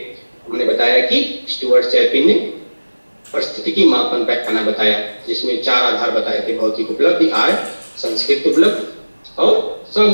हमने बताया कि स्टुअर्ट चैपिन ने परिस्थितिकी मापन पैमाना बताया, जिसमें 4 आधार बताए थे, भौतिक उपलब्धि, आय, संस्कृत उपलब्धि और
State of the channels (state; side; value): inverted; both; correlation -1.00